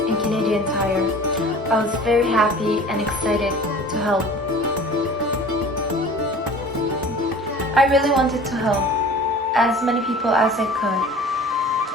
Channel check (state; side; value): normal; both; correlation 0.43